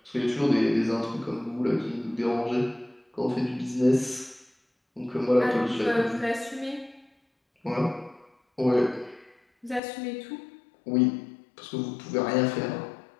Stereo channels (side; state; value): right; drops out; at 9.8 s